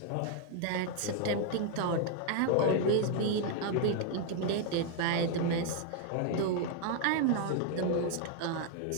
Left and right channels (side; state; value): both; different; correlation 0.00